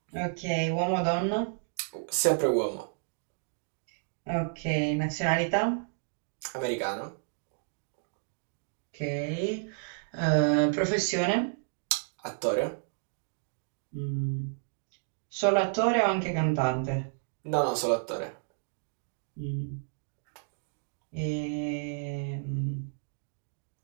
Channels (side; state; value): left; silent; digital silence